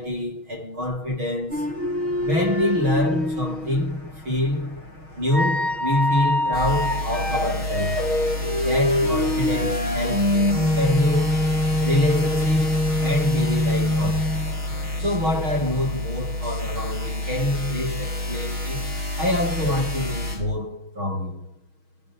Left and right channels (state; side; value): late; left; 6.3 ms